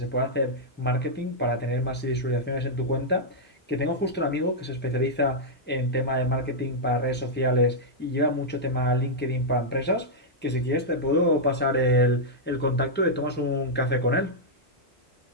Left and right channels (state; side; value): normal; both; correlation -0.07